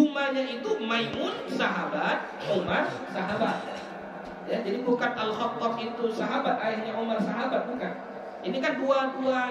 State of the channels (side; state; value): both; identical; correlation 1.00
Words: itu Maimun sahabat, Umar sahabat. Ya, jadi bukan Al-Khattab itu sahabat, ayahnya Umar sahabat, bukan. Ini kan dua